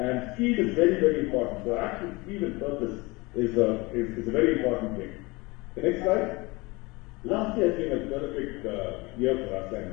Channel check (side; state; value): right; quieter; 24.3 dB